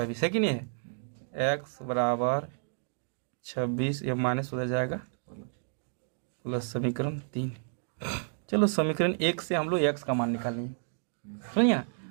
है कि नहीं है, x बराबर 26, ये माइनस हो जाएगा प्लस समीकरण 3। चलो समीकरण 1 से हम लोग x का मान निकालेंगे, समझिए ना,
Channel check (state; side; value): silent; left; digital silence